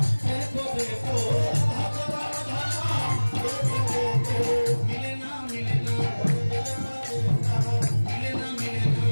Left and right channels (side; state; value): both; inverted; correlation -1.00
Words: দেখো দেখো মিলে না মিলে না মিলে না মিলে